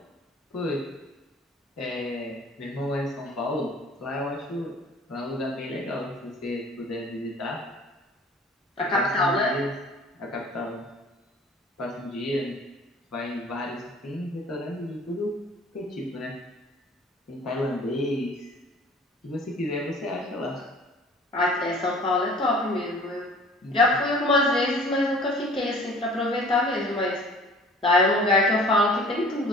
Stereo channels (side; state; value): both; normal; correlation 0.48